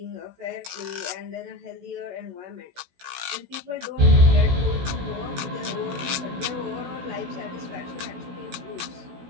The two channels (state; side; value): late; left; 16 ms